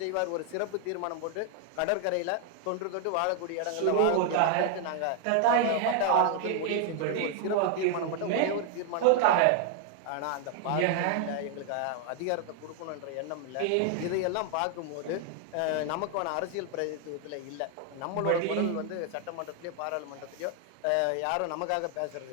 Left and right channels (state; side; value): different; both; correlation 0.00